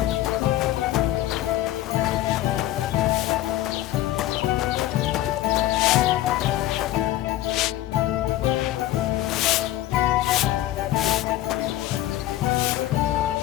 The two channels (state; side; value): quieter; right; 14.4 dB